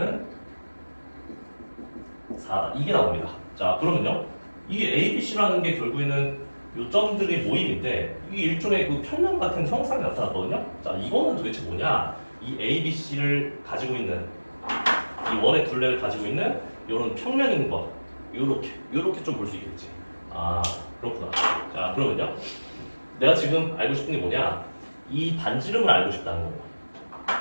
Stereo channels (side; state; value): both; inverted; correlation -1.00